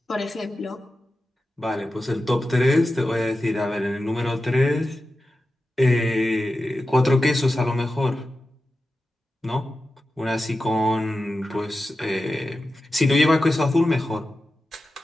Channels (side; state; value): both; normal; correlation 0.92